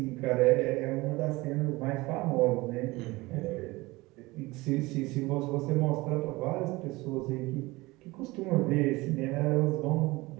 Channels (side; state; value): left; quieter; 21.5 dB